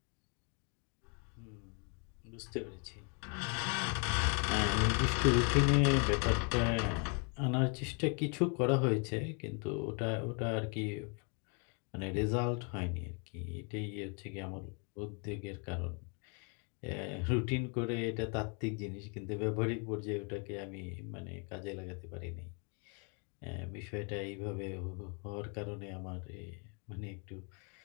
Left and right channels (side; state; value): right; quieter; 37.0 dB